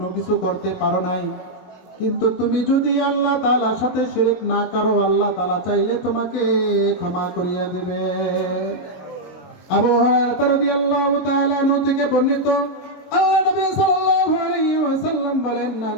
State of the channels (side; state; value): right; late; 22 ms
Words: কিছু করতে পারো নাই, কিন্তু তুমি যদি আল্লাহ তাআলার সাথে শিরক না করো, আল্লাহ তাআলা চাইলে তোমাকে ক্ষমা করিয়া দেবে। আবু হুরায়রা রাদিয়াল্লাহু তাআলা আনহু থেকে বর্ণিত, আল্লাহ নবী সাল্লাল্লাহু আলাইহি ওয়াসাল্লাম বলেন, মান